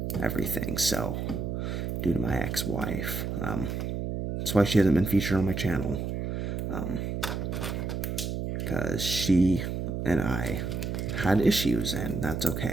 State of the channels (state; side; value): noise; right; hum, 3 dB below the sound